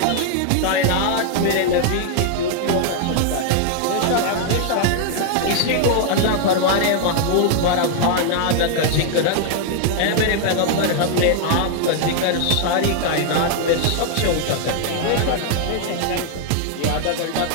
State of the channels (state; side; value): different; both; correlation 0.00